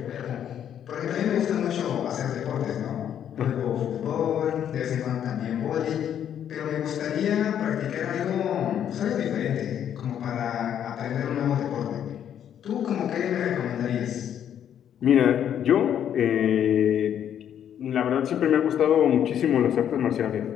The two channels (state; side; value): quieter; right; 9.6 dB